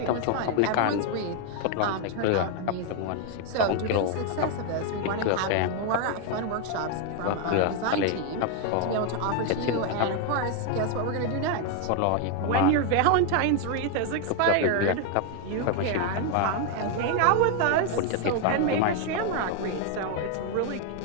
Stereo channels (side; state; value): both; different; correlation 0.00